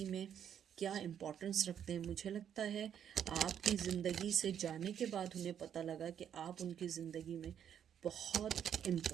में क्या इम्पोर्टेंस रखते हैं। मुझे लगता है आपकी ज़िंदगी से जाने के बाद उन्हें पता लगा कि आप उनकी ज़िंदगी में बहुत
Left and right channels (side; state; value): left; quieter; 9.0 dB